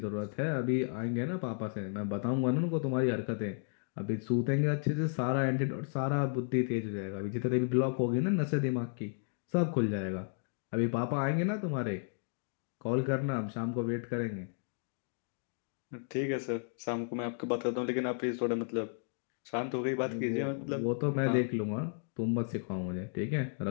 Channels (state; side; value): silent; right; digital silence